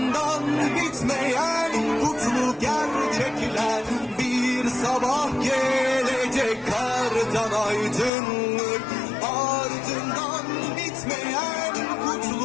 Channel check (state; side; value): drops out; right; at 8.1 s